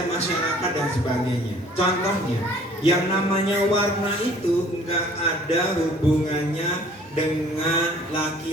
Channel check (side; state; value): both; normal; correlation 0.54